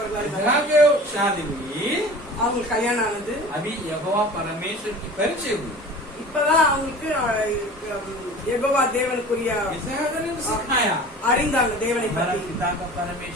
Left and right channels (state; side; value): normal; both; correlation 0.40